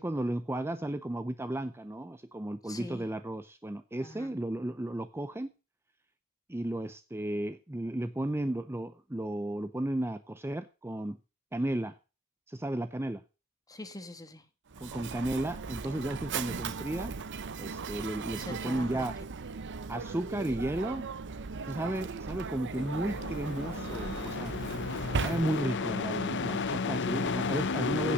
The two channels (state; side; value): normal; both; correlation 0.66